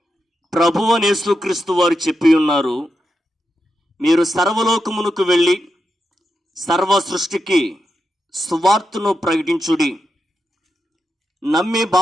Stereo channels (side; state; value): both; normal; correlation 0.87